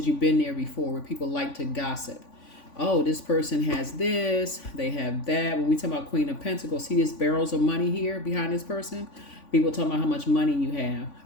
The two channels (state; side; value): late; right; 3.5 ms